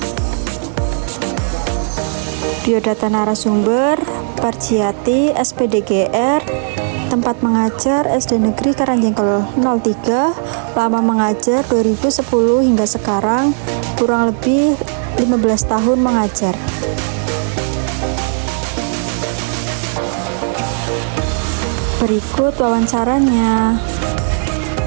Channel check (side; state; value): left; silent; digital silence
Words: Biodata narasumber Parjiati SPDGR, tempat mengajar SD Negeri Karangjengkel 03, lama mengajar 2010 hingga sekarang, kurang lebih 15 tahun mengajar. Berikut wawancaranya.